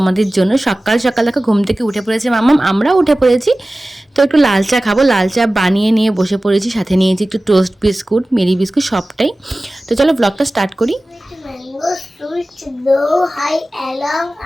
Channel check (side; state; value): both; normal; correlation 0.97